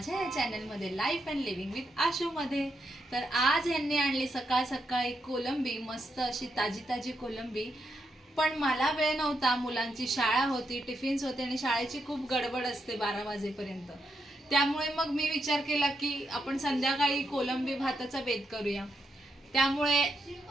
या चॅनलमध्ये life and living with Ashu मध्ये। तर आज यांनी आणली सकाळ सकाळी कोलंबी, मस्त अशी ताजी ताजी कोलंबी। पण मला वेळ नव्हता, मुलांची शाळा होती, टिफिन्स होते आणि शाळेची खूप गडबड असते 12 वाजेपर्यंत। त्यामुळे मग मी विचार केला की आपण संध्याकाळी कोलंबी भाताचा बेत करूया। त्यामुळे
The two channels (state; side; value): normal; both; correlation 0.82